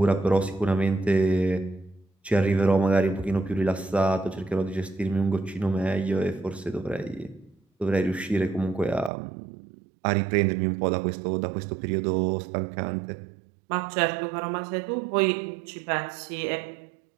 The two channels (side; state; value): left; drops out; at 9.1 s